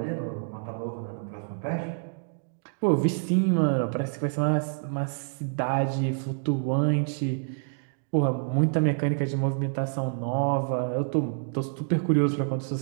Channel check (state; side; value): silent; left; digital silence